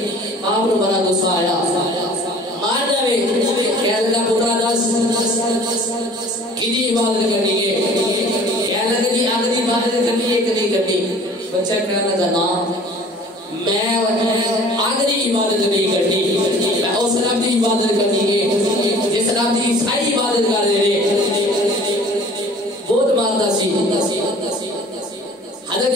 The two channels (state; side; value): normal; both; correlation 0.48